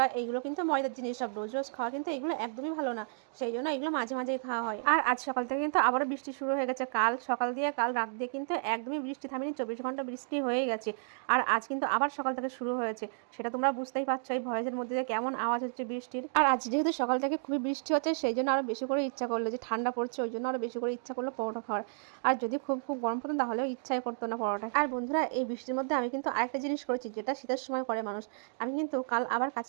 এইগুলো কিন্তু ময়দার জিনিস, সব রোজ রোজ খাওয়া কিন্তু এগুলো একদমই ভালো না, সেই জন্য এগুলো মাঝে মাঝেই খাওয়া হয়। আর আজ সকাল থেকে কিন্তু আবারও বৃষ্টি শুরু হয়ে গেছে। কাল সকাল দিয়ে কাল রাত দিয়ে কিন্তু একদমই বৃষ্টি থামেনি, 24 ঘন্টা বৃষ্টি হয়ে গেছে। আর আজ কিন্তু আবার সকাল থেকে শুরু হয়েছে, সেটা তোমরা বুঝতেই পারছো এই ভয়েসের মধ্যে দিয়ে কেমন আওয়াজ হচ্ছে বৃষ্টির। আর আজ যেহেতু সকাল থেকে খুবই বৃষ্টি হচ্ছে, সেই জন্য আরও বেশি করে ইচ্ছা করলো, যে ঠান্ডা পড়ছে ওই জন্য আরও বেশি করে ইচ্ছা করলো পরোটা খাওয়ার। আর যদি খুব খুব গরম পড়তো তাহলেও ইচ্ছাই করতো না পরোটা। আর বন্ধুরা, এই বৃষ্টির মধ্যে আমি কিন্তু আরেকটা জিনিস করেছি, যেটা শীতের সময় করে মানুষ। আমি কিন্তু কাল আবার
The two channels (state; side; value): silent; left; digital silence